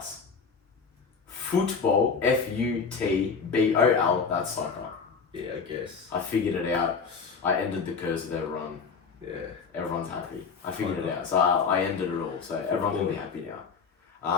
Football, Futbol, that's soccer. Yeah, I guess. I figured it out. I ended the curse of everyone. Yeah. Everyone's happy. I figured it out. So I ended it all. So everyone can be happy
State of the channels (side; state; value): right; quieter; 5.4 dB